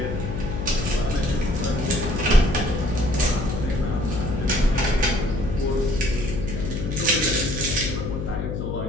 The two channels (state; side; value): noise; left; hum, 4 dB below the sound